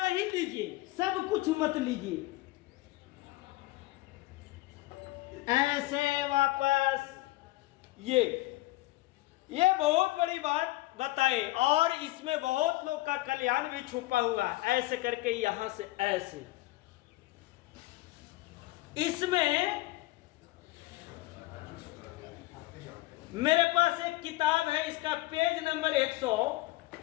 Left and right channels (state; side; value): quieter; right; 19.1 dB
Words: लीजिए, सब कुछ मत लीजिए। ऐसे वापस ये बहुत बड़ी बात बताए और इसमें बहुत लोग का कल्याण भी छुपा हुआ है। ऐसे करके यहां से ऐसे। इसमें मेरे पास एक किताब है, इसका पेज नंबर